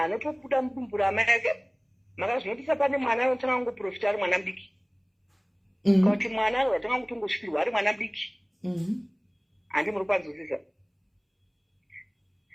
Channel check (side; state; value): both; identical; correlation 1.00